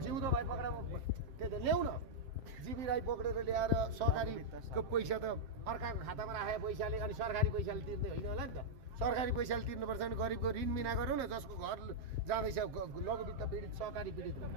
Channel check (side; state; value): left; late; 7.6 ms